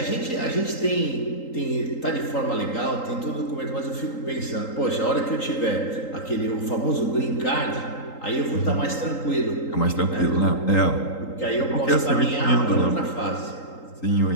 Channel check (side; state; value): right; late; 3.8 ms